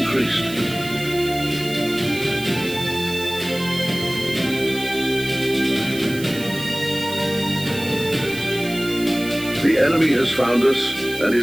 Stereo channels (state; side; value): noise; right; hiss, 13 dB below the sound